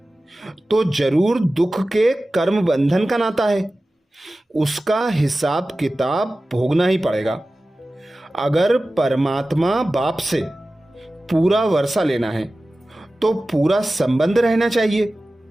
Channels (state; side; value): normal; both; correlation 0.96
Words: तो जरूर दुख के कर्म बंधन का नाता है। उसका हिसाब किताब भोगना ही पड़ेगा। अगर परमात्मा बाप से पूरा वर्षा लेना है तो पूरा संबंध रहना चाहिए।